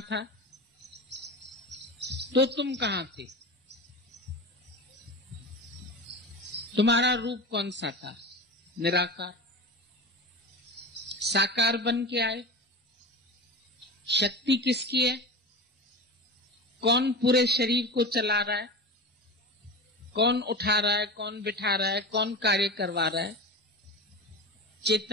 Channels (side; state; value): both; normal; correlation 0.27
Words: था तो तुम कहां थे? तुम्हारा रूप कौन सा था? निराकार। साकार बन के आए। शक्ति किसकी है? कौन पूरे शरीर को चला रहा है? कौन उठा रहा है? कौन बिठा रहा है? कौन कार्य करवा रहा है?